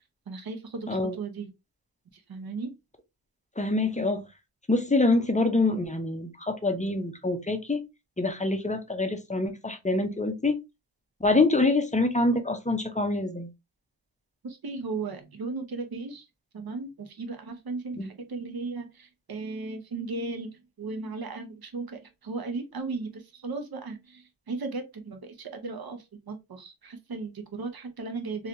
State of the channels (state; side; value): normal; both; correlation 0.48